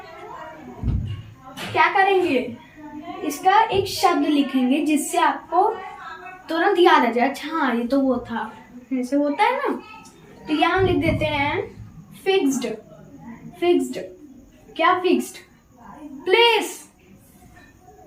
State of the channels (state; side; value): identical; both; correlation 1.00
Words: क्या करेंगे, इसका एक शब्द लिखेंगे जिससे आपको तुरंत याद आ जाए, अच्छा हाँ ये तो वो था, ऐसे होता है ना। तो यहाँ हम लिख देते हैं फिक्स्ड। क्या फिक्स्ड, प्लेस,